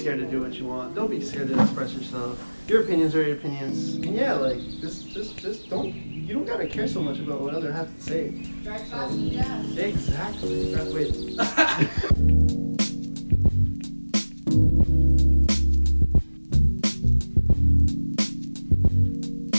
to do what you want. Don't be scared to express yourself. Your opinions are your opinions. And yeah, just don't. You don't gotta care so much about what others have to say. Drive fast and jazz. Exactly. Wait.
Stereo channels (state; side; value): inverted; both; correlation -1.00